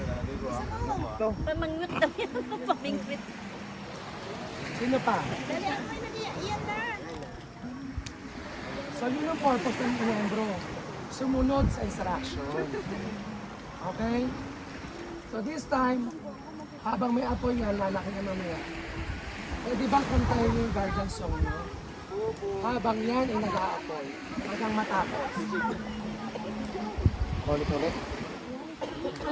Gusto mo? Pamangwit na yan. Pamingwit. Sino pa? Dali, ako na yan na. So yun ang purpose ng miyembro. Sumunod sa instruction. Okay? So this time, habang may apoy yan, lalaki na mamaya. Eh di ba kantayin yung guardian song nyo? Habang yan ay nag-aapoy, hanggang matapos. Ulit-ulit.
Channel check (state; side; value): identical; both; correlation 1.00